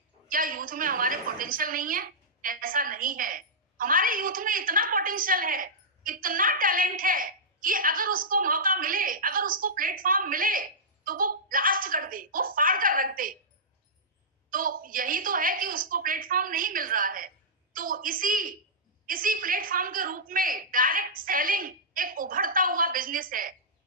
क्या यूथ में हमारे पोटेंशियल नहीं है? ऐसा नहीं है। हमारे यूथ में इतना पोटेंशियल है, इतना टैलेंट है कि अगर उसको मौका मिले, अगर उसको प्लेटफॉर्म मिले, तो वो ब्लास्ट कर दे, वो फाड़ कर रख दे। तो यही तो है कि उसको प्लेटफॉर्म नहीं मिल रहा है। तो इसी प्लेटफॉर्म के रूप में डायरेक्ट सेलिंग एक उभरता हुआ बिजनेस है।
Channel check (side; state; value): both; normal; correlation -0.14